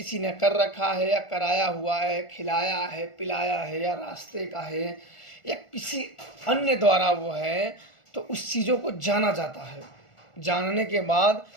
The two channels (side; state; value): right; late; 1.4 ms